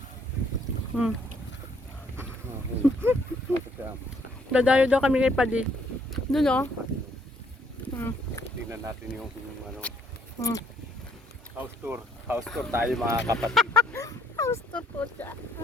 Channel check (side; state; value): both; normal; correlation 0.67